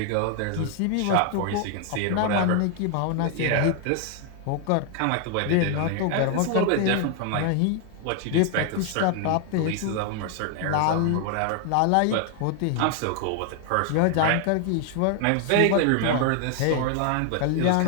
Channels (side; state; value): both; different; correlation 0.00